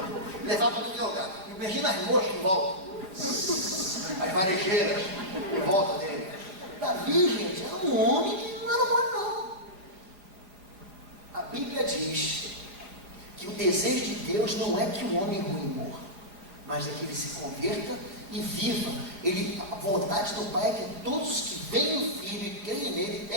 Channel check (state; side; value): late; left; 5.0 ms